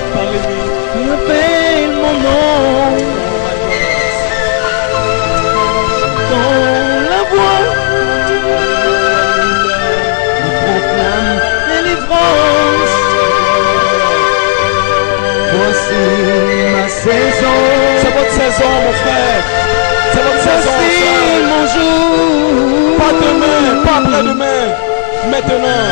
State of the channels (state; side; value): silent; right; digital silence